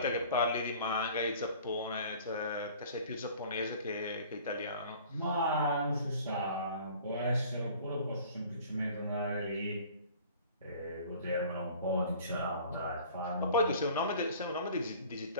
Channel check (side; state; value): both; inverted; correlation -0.48